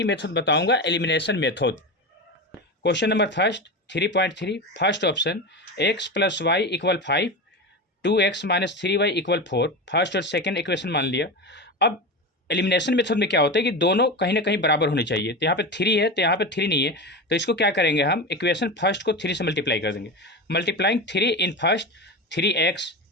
मेथड बताऊंगा, elimination method. Question number first 3.3 first option x plus Y equal 5, 2x minus 3y equal 4। First और सेकेंड इक्वेशन मान लिया। अब एलिमिनेशन मेथड में क्या होता है कि दोनों कहीं ना कहीं बराबर होने चाहिए। तो यहाँ पे 3 है तो यहाँ पे 3 नहीं है, तो इसको क्या करेंगे हम, इक्वेशन फर्स्ट को 3 से मल्टीप्लाई कर देंगे। Multiplying 3 in first 3x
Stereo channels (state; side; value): normal; both; correlation 0.22